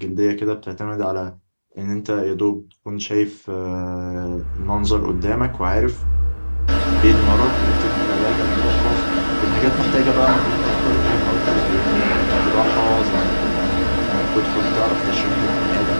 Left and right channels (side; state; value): both; inverted; correlation -1.00